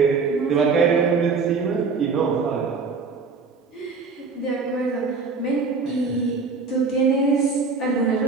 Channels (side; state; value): left; quieter; 4.6 dB